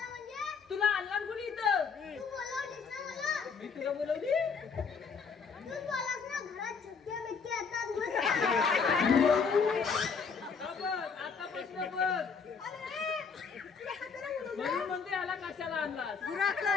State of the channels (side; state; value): right; quieter; 5.6 dB